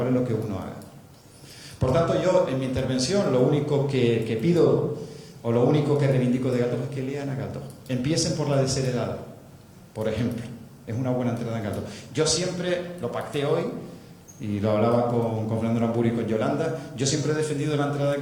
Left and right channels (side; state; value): both; identical; correlation 1.00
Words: lo que uno haga. Por tanto, yo en mi intervención lo único que pido o lo único que reivindico de Galdós es que lean a Galdós. Empiecen por la desheredada. Por ejemplo, es una buena entrada en Galdós. Yo siempre lo pacté hoy, y lo hablaba con Fernando Aramburu y con Yolanda, yo siempre he defendido la entrada en